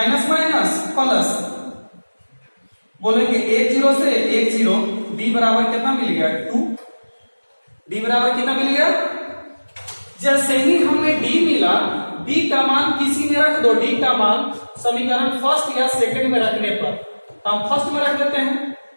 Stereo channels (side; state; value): both; inverted; correlation -1.00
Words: माइनस प्लस, बोलेंगे 1 0 से 1 0, d बराबर कितना मिल गया 2। d बराबर कितना मिल गया? जैसे ही हमें d मिला, d का मान किसी में रख दो। d का मान समीकरण फर्स्ट या सेकंड में रखने पर, तो हम फर्स्ट में रख देते हैं।